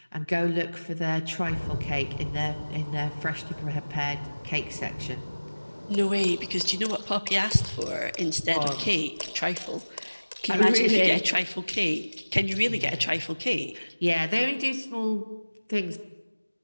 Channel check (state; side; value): inverted; both; correlation -1.00